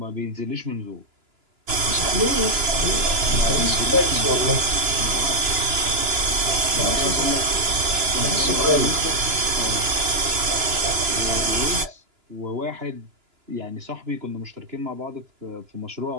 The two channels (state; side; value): late; left; 2.9 ms